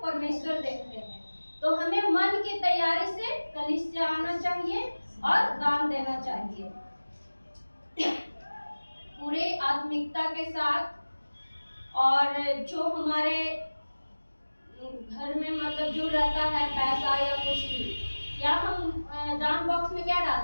परमेश्वर देखते हैं। तो हमें मन की तैयारी से कलीसिया आना चाहिए और दान देना चाहिए पूरे आत्मिकता के साथ। और जो हमारे घर में मतलब जो रहता है पैसा या कुछ भी, या हम दान बॉक्स में क्या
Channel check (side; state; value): both; inverted; correlation -1.00